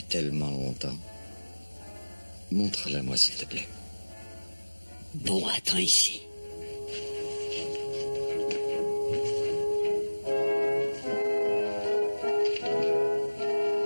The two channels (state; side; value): inverted; both; correlation -1.00